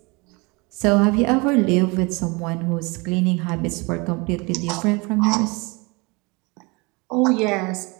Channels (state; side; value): quieter; left; 27.5 dB